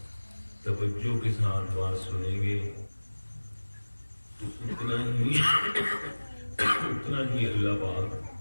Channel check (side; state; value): both; inverted; correlation -1.00